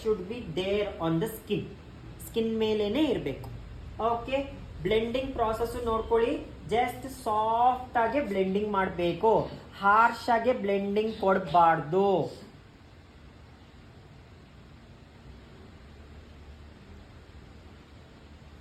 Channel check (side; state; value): both; identical; correlation 1.00